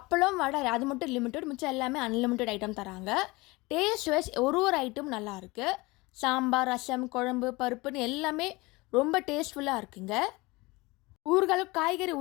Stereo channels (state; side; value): quieter; right; 23.2 dB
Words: வடை அது மட்டும் லிமிட்டட், மிச்சம் எல்லாமே அன்லிமிட்டட் ஐட்டம் தராங்க. டேஸ்ட் வைஸ் ஒரு ஐட்டம் நல்லாயிருக்கு. சாம்பார், ரசம், குழம்பு, பருப்புன்னு எல்லாமே ரொம்ப டேஸ்ட்ஃபுல்லாக இருக்குங்க. ஊறுகாய், காய்கறி